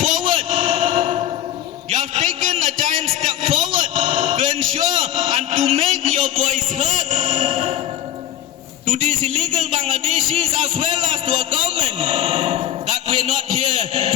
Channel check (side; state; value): right; quieter; 11.7 dB